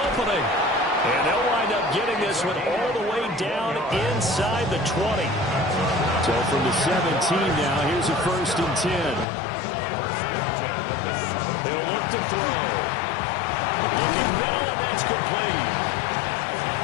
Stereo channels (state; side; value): drops out; right; at 9.2 s